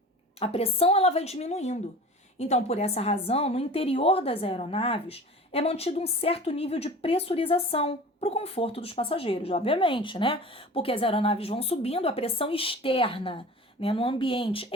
A pressão ela vai diminuindo. Então, por essa razão, no interior das aeronaves é mantido um certo nível de pressurização para o conforto dos passageiros, obviamente, né? Porque as aeronaves vão subindo, a pressão externa, né, no ambiente,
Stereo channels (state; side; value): normal; both; correlation 0.39